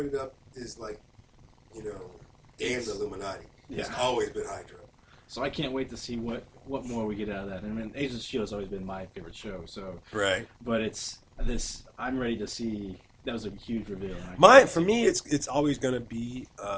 it up is like, damn the Illuminati. It's always been Hydra. So I can't wait to see what more we get out of that. I mean, Agents of S.H.I.E.L.D. has always been my favorite show. So Right. But it's this. I'm ready to see. That was a huge reveal. And for me, it's always going to be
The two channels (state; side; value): identical; both; correlation 1.00